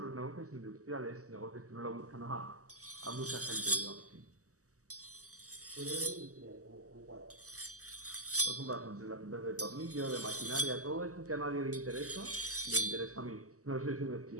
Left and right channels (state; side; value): late; left; 0.66 ms